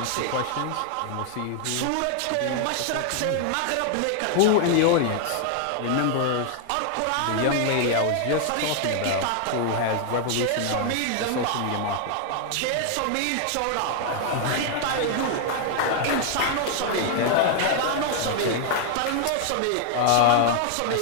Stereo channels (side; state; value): both; different; correlation 0.00